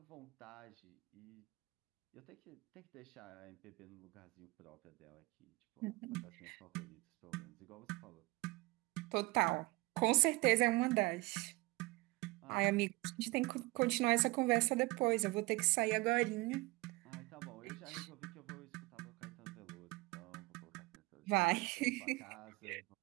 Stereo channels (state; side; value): quieter; left; 23.2 dB